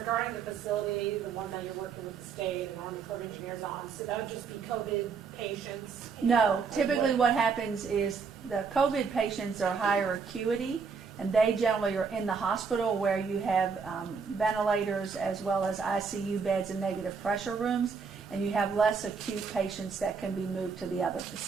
the facility, the one that you're working with the state and Army Corps of Engineers on, so that would just be COVID patients? No, typically what happens is the COVID patients are higher acuity, and they generally are in the hospital where you have ventilators as well as ICU beds and negative pressure rooms, and you have less acute patients that can be moved to the other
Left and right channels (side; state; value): left; quieter; 5.5 dB